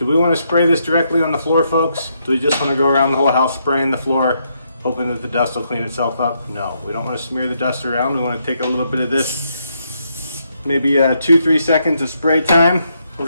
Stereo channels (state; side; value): inverted; both; correlation -0.77